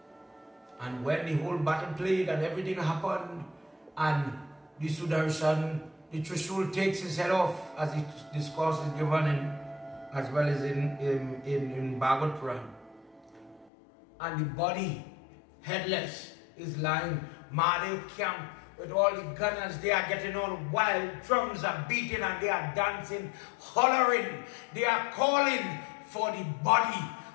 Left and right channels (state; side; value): drops out; right; at 13.7 s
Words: And when the whole battle played and everything happened, and the Sudarshan, the Trishul takes his head off, as the discourse is given in, as well as in Bhagavad Puran. And the body, headless, is lying. Mahadev camp with all the gunners, they are getting all wild, drums are beating and they are dancing, hollering. They are calling for the body